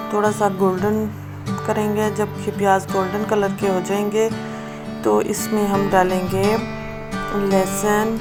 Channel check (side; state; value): both; identical; correlation 1.00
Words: थोड़ा सा गोल्डन करेंगे। जब ये प्याज गोल्डन कलर के हो जाएंगे तो इसमें हम डालेंगे लहसुन